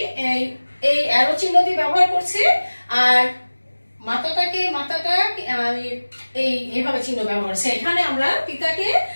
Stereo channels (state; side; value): inverted; both; correlation -1.00